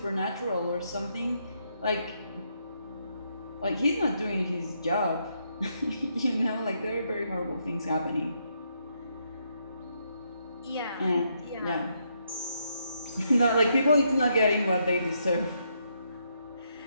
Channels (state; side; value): inverted; both; correlation -0.77